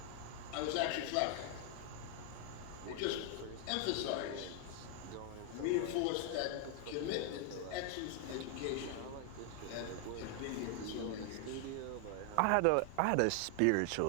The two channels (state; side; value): different; both; correlation 0.00